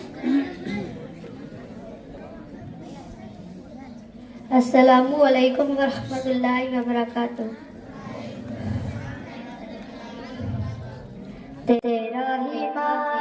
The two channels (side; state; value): both; identical; correlation 1.00